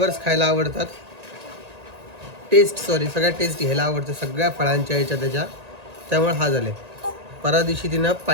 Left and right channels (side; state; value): left; late; 1.8 ms